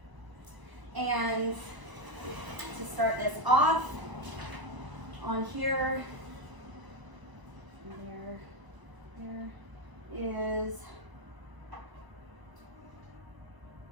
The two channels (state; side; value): late; left; 1.0 ms